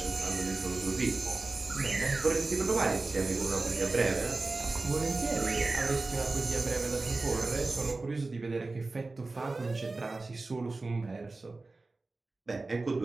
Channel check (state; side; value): quieter; left; 3.4 dB